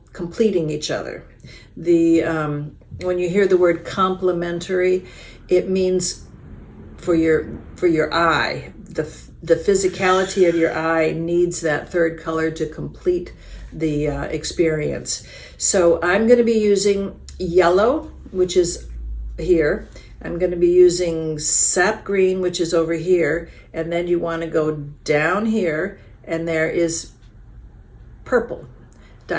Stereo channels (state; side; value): identical; both; correlation 1.00